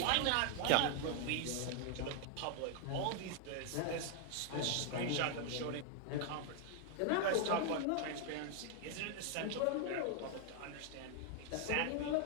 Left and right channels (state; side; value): different; both; correlation 0.00